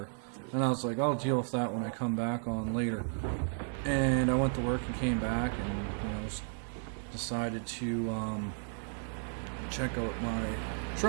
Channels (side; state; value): left; silent; 55 dB below the other